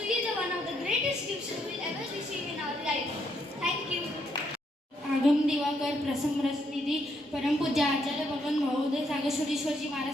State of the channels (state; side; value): normal; both; correlation 0.75